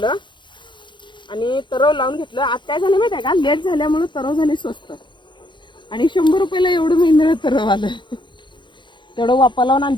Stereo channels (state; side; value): late; right; 0.23 ms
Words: आणि तरव लावून घेतलं. आज काय झालं माहिती आहे का, लेट झाल्यामुळे तरव झाले स्वस्त आणि 100 रुपयाला एवढं महिन्याला तरव आलं. तेवढं वापा लावून